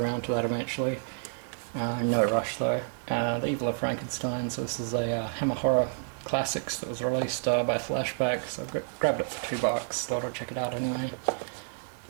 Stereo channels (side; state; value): left; silent; digital silence